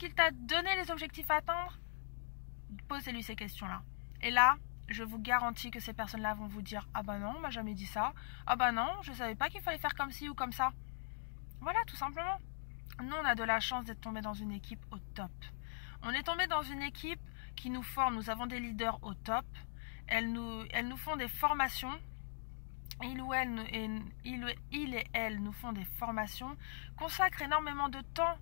t'a donné les objectifs à atteindre? Posez-lui ces questions-là. Et là, je vous garantis que ces personnes-là vont vous dire « Ah bah non, on m'a jamais dit ça. Ah bah non, je savais pas qu'il fallait faire comme ci ou comme ça. » Voilà, tout simplement. Nous, on a de la chance d'être tombés dans une équipe au top. On est tombé dans une équipe qui nous forme. Nous avons des leaders au top. Elles nous font des formations. Il et elle nous font des formations, consacrent énormément de temps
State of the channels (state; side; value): silent; right; digital silence